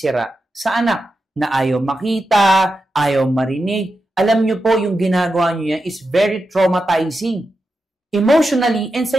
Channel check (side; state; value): both; normal; correlation 0.89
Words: sa anak na ayaw makita, ayaw marinig. Alam nyo po, yung ginagawa nyo yan is very traumatizing. Emotionally and